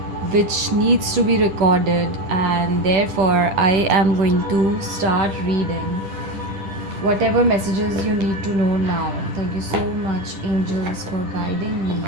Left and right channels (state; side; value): late; left; 10 ms